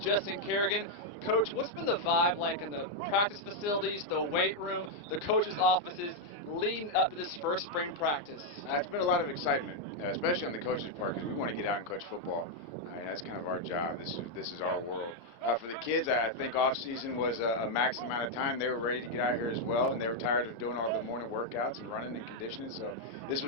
Kerrigan. Coach, what's been the vibe like in the practice facilities, the weight room, the coaches' offices leading up to this first spring practice? It's been a lot of excitement, especially on the coaches' part, because we want to get out and coach football. That's kind of our job. This is our world. For the kids, I think off season was a max amount of time. They were ready to get out here as well, and they were tired of doing all the morning workouts and running and conditioning, so this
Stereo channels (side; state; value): right; late; 31 ms